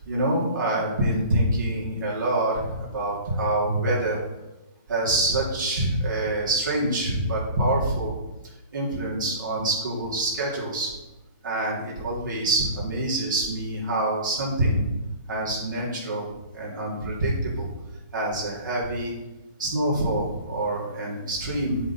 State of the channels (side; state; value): both; inverted; correlation -0.41